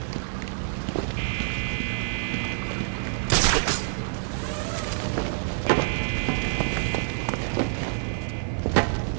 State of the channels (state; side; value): silent; left; digital silence